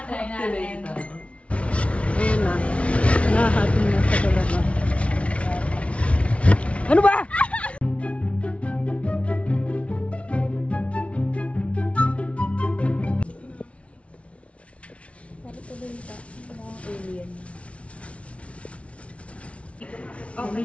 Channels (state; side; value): late; right; 0.062 ms